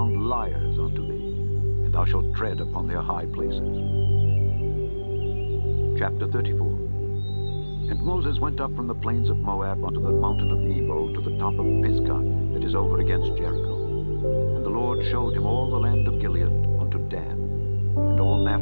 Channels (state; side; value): inverted; both; correlation -1.00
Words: liars unto thee, and thou shalt tread upon their high places. Chapter 34. And Moses went up from the plains of Moab unto the mountain of Nebo to the top of Pisgah that is over against Jericho. And the Lord showed him all the land of Gilead unto Dan, and all